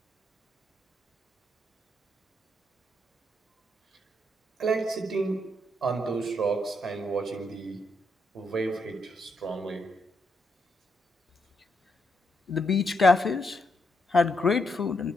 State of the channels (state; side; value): normal; both; correlation 0.78